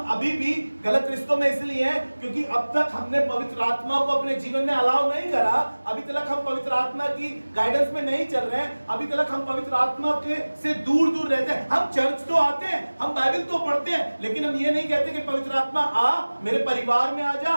अभी भी गलत रिश्तों में इसलिए हैं क्योंकि अब तक हमने पवित्र आत्मा को अपने जीवन में अलाउ नहीं करा। अभी तक हम पवित्र आत्मा की गाइडेंस में नहीं चल रहे हैं। अभी तक हम पवित्र आत्मा के से दूर दूर रहते हैं। हम चर्च तो आते हैं, हम बाइबल तो पढ़ते हैं, लेकिन हम ये नहीं कहते कि पवित्र आत्मा आ, मेरे परिवार में आ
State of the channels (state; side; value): inverted; both; correlation -1.00